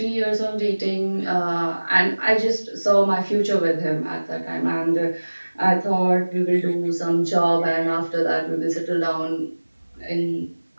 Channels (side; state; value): both; inverted; correlation -1.00